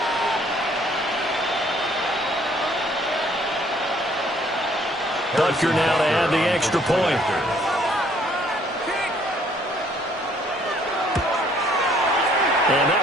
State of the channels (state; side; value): normal; both; correlation 0.62